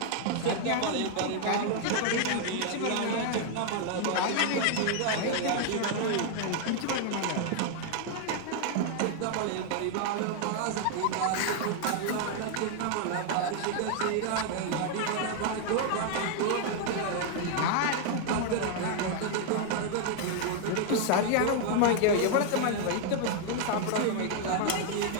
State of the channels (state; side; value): different; both; correlation 0.00